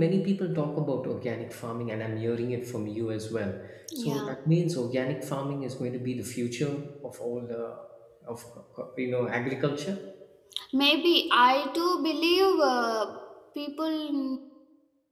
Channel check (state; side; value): identical; both; correlation 1.00